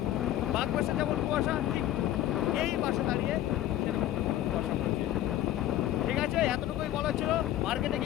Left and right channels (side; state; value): right; quieter; 13.2 dB